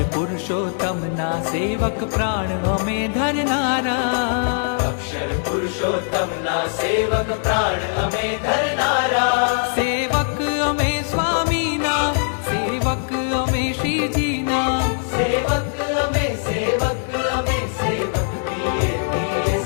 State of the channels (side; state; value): right; silent; digital silence